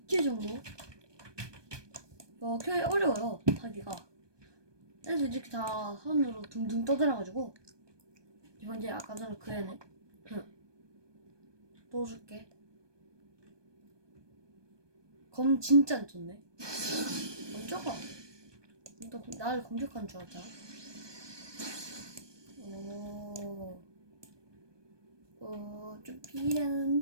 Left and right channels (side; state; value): left; late; 1.2 ms